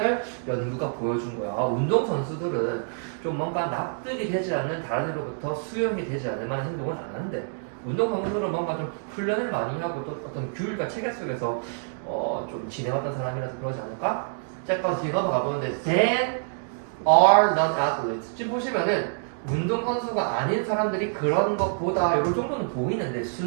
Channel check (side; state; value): left; silent; digital silence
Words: 연구가 보여준 거야. 운동 선수들은 좀 뭔가 납득이 되지 않는 다른 이로부터 수용이 되지 않을 만한 행동은 안 한대. 운동 선수들은 뭔가 좀 훈련을 많이 하고 또 어떤 규율과 체계 속에서 좀 지내왔던 사람이라서 그러지 않을까? 잠깐 뒤에 넘어가 보는데 then are non-athletes. 지금 보시면은 운동 선수가 아닌 사람들이 그런 것보다 이런 정도는 보이는데